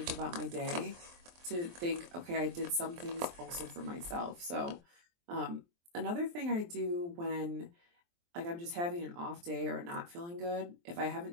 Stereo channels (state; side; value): late; left; 23 ms